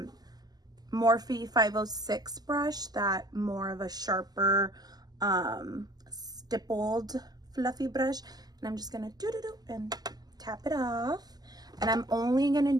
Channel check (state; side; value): late; left; 0.19 ms